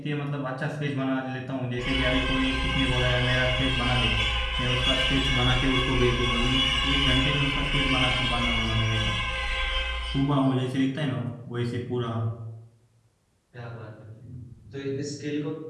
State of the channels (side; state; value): both; identical; correlation 1.00